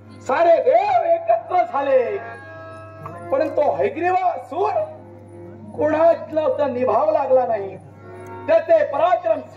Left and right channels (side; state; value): both; identical; correlation 1.00